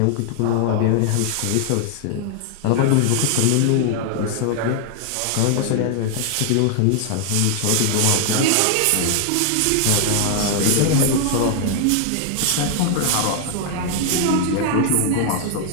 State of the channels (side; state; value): both; different; correlation 0.00